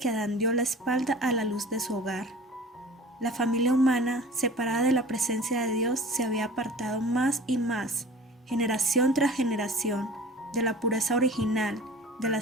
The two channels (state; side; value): normal; both; correlation 0.42